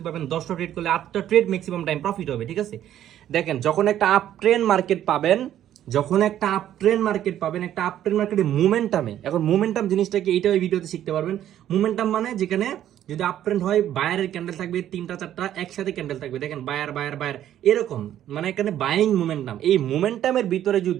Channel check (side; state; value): left; quieter; 11.5 dB